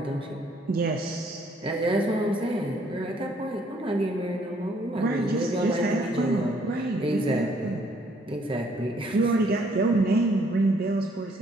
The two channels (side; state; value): both; normal; correlation 0.65